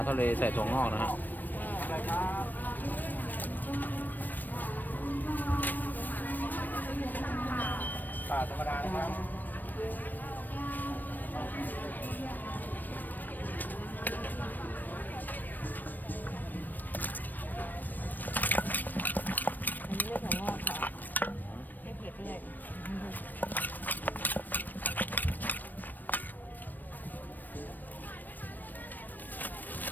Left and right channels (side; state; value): right; late; 0.089 ms